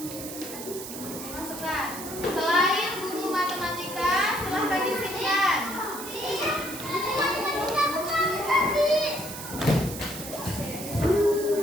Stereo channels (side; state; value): right; noise; hiss, 10 dB below the sound